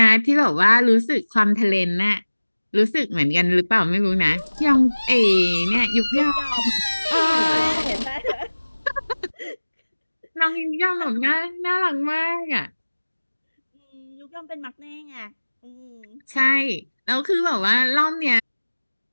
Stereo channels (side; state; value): both; inverted; correlation -1.00